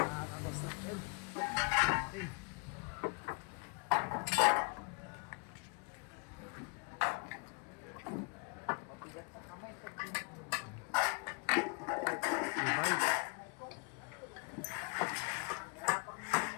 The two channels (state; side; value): quieter; right; 34.3 dB